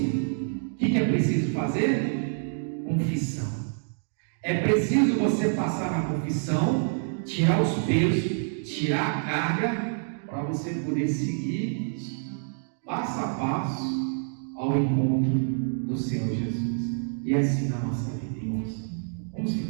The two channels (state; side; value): silent; left; digital silence